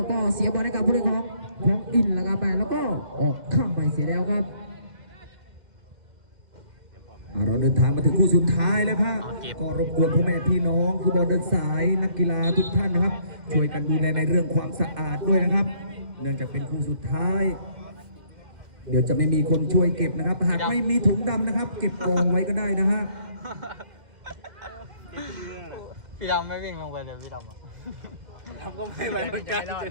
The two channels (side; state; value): left; late; 2.1 ms